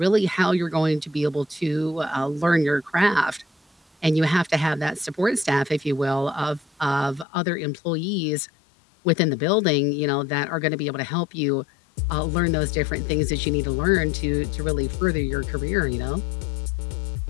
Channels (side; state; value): right; drops out; at 7.2 s